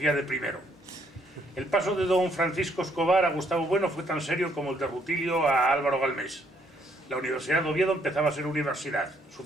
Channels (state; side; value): normal; both; correlation 0.69